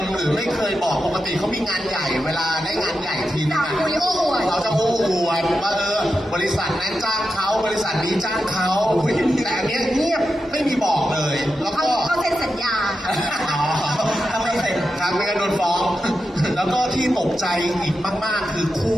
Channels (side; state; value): both; normal; correlation 0.89